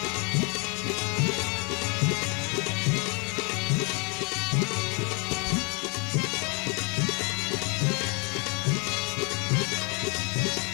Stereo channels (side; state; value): right; quieter; 34.2 dB